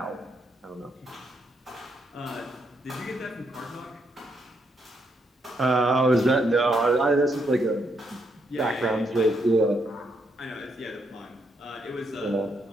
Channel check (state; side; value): normal; both; correlation 0.77